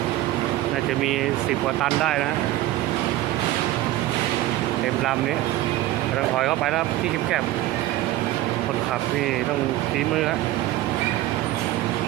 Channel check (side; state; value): left; quieter; 15.7 dB